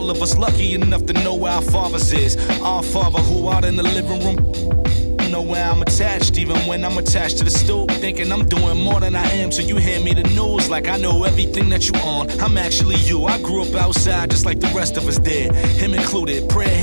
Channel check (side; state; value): both; inverted; correlation -1.00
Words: of us lucky enough to know where our fathers is. Our father who out in the living room. Know where I'm attached, even when I'm attached to the stoop. Thinking I'm doing more than I am, so you hand me the news like I know everything that you on. I'm actually you. I grew up outside just like the rest of us did, him included. Prayer